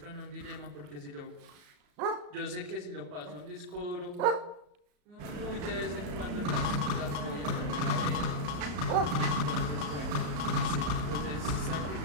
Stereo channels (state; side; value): late; left; 34 ms